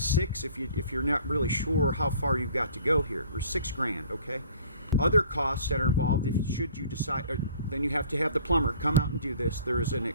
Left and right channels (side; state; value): both; inverted; correlation -0.52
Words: if you're not really sure how far you've got to go here, or $6,000, okay? Other costs that are involved, should you decide, then you have to have the plumber come out and do this. There is a